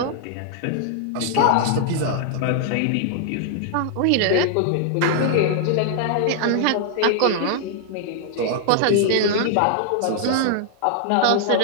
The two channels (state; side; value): different; both; correlation 0.00